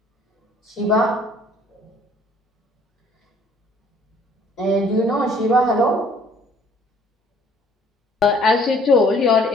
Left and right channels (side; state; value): both; normal; correlation 0.58